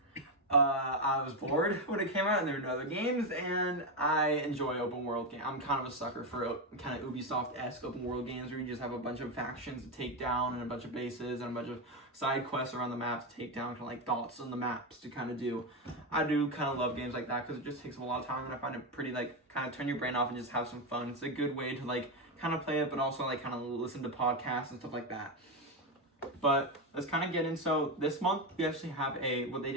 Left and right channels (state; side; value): normal; both; correlation 0.10